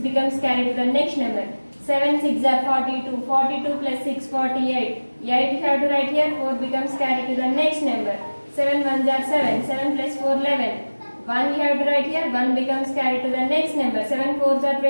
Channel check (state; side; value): inverted; both; correlation -1.00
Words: becomes carried to the next number. 7 6 are 42. 42 plus 6 48. 8 you have to write here. 4 becomes carried to the next number. 7 1s are 7. 7 plus 4 11. 1 you have to write here. 1 becomes carried to the next number. 7 4s are